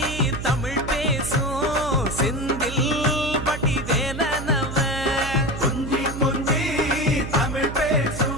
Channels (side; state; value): right; noise; hum, 8 dB below the sound